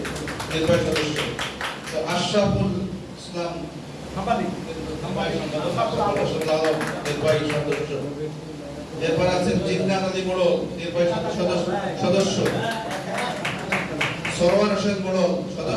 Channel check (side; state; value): both; identical; correlation 1.00